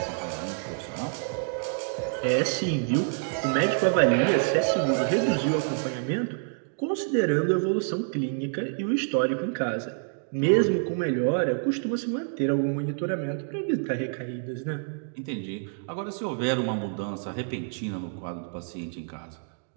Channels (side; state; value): left; silent; digital silence